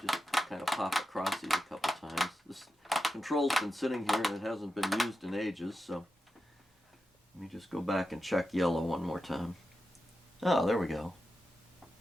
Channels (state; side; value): normal; both; correlation 0.90